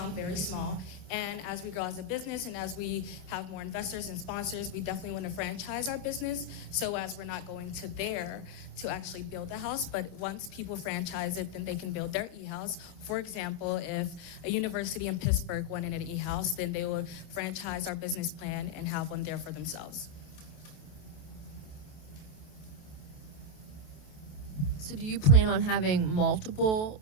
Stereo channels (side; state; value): right; late; 28 ms